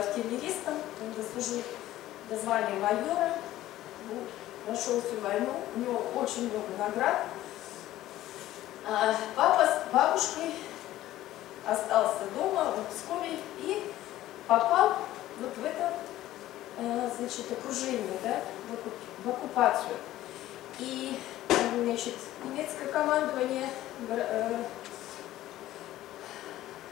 он дослужил до звания майора, прошел всю войну, у него очень много наград. А папа с бабушкой остался дома в Пскове и попал вот в это, значит, окружение, да, в оккупацию. И, значит, немецкое командование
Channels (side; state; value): right; quieter; 14.6 dB